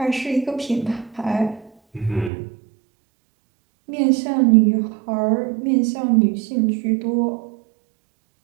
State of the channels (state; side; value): drops out; left; at 2.3 s